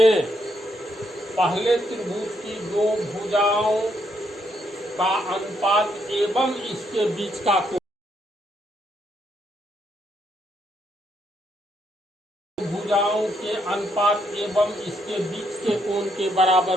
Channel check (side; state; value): both; normal; correlation 0.75